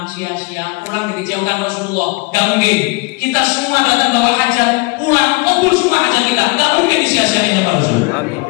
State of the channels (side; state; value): right; quieter; 27.2 dB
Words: sia-sia, pulang dikecewakan Rasulullah. Gak mungkin. Kita semua datang bawa hajat, pulang kabul semua hajat kita, gak mungkin disia-siain sama Rasulullah. Amin.